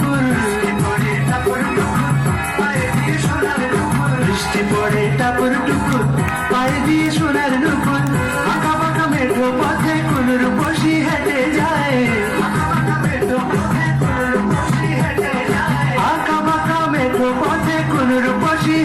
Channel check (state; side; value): identical; both; correlation 1.00